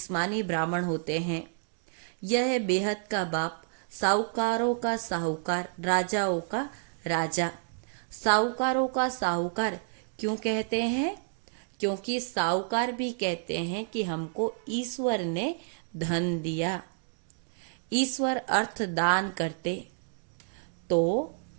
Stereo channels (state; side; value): silent; left; digital silence